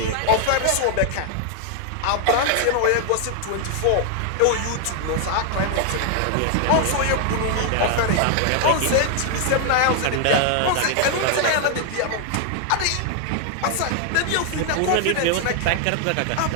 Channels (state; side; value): different; both; correlation 0.00